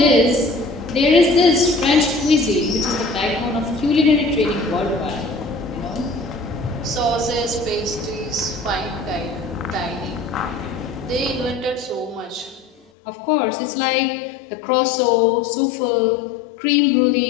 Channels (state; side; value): drops out; right; at 12.8 s